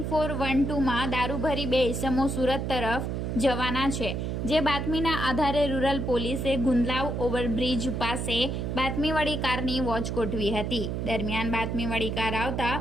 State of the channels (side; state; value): right; noise; hum, 2 dB below the sound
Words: દારૂ ભરી બે ઇસમો સુરત તરફ જવાના છે। જે બાતમીના આધારે રૂરલ પોલીસે ગુંદલાવ ઓવરબ્રિજ પાસે બાતમીવાળી કારની વોચ ગોઠવી હતી। દરમિયાન બાતમીવાળી કાર આવતા